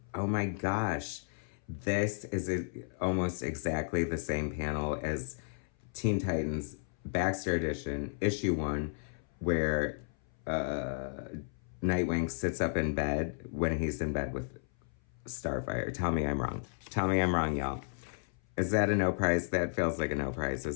oh my gosh, this is almost exactly the same panel as Teen Titans Baxter Edition, issue 1, where Nightwing sits up in bed when he's in bed with Starfire. Tell me I'm wrong. Tell me I'm wrong, y'all. Is that a no prize? That feels like a no prize,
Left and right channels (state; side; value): silent; right; 55 dB below the other